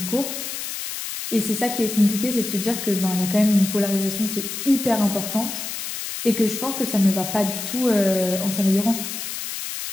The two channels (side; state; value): left; noise; hiss, 6 dB below the sound